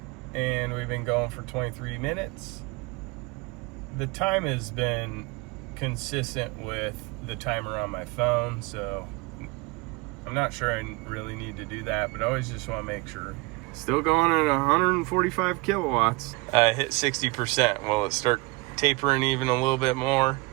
And we've been going for 23 minutes. The time has been consistent with the timer on my phone, so I'm not sure I really need to do that, but I always just want to make sure. Still going at 145 kilowatts. I hit 60%. Will it start tapering even a little bit more?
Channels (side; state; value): left; quieter; 24.7 dB